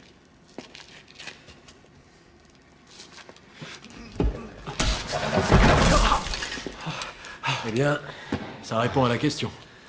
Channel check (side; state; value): both; identical; correlation 1.00